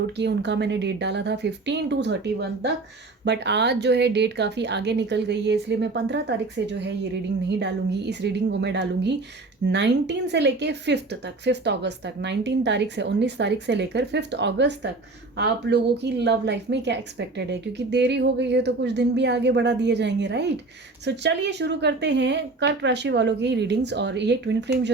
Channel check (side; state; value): left; quieter; 3.4 dB